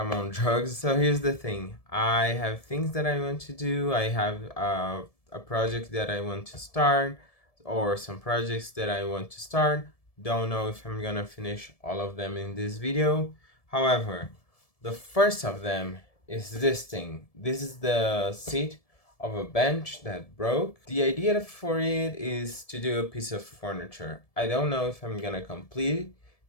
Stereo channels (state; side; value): late; right; 1.7 ms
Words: on drugs. So here's the thing. I have things that I want to do. I have a project that I want to start, or some projects that I want to start. Don't know if I'm gonna finish all of them in this video. However, the first of them is this thing. This is the seat of a bench that broke. The idea for it is to do a piece of furniture. I don't know if I'm gonna complete